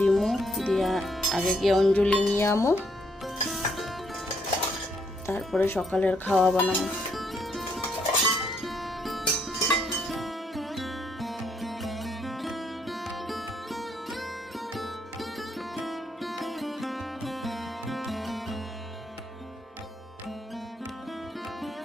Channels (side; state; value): both; normal; correlation 0.72